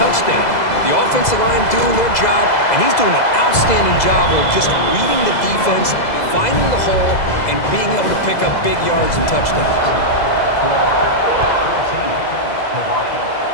The offensive line doing their job, and he's doing an outstanding job of just reading the defense, finding the hole, and being able to pick up big yards and touchdowns.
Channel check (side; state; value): right; late; 2.0 ms